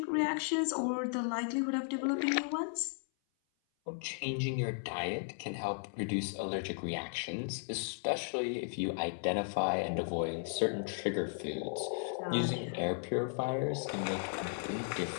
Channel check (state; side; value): silent; right; 54 dB below the other